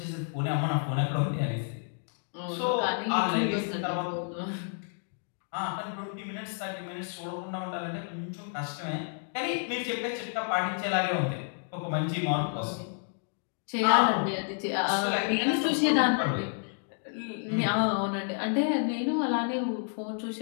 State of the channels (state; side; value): silent; right; 58 dB below the other